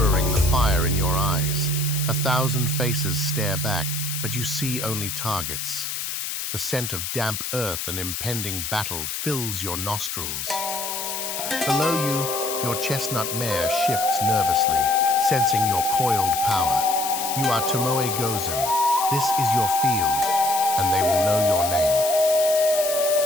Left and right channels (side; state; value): left; noise; hiss, 4 dB below the sound